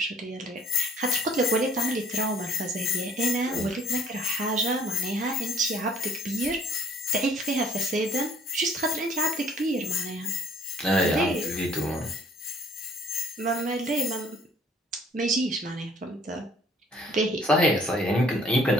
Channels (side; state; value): both; normal; correlation 0.57